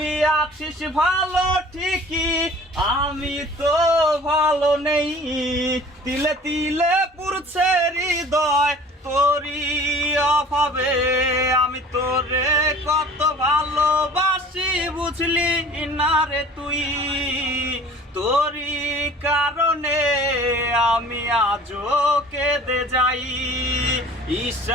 আছিস ভালো ঠিকই, আমি তো ভালো নেই। তিলে তিলে পুরছে হৃদয় তোরি অভাবে। আমি তোরে কত ভালোবাসি বুঝলি না রে তুই। তোরি কারণে আমি আজও কেঁদে যাই।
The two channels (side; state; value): both; normal; correlation 0.47